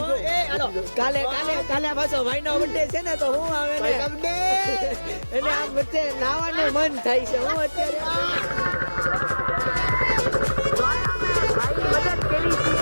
કાલે પાછો ભાઈનો બર્થડે છે ને, તો હું આવે ને એને આમ વચ્ચે નાવાનું મન થાય છે. હું અત્યારે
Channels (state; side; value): inverted; both; correlation -1.00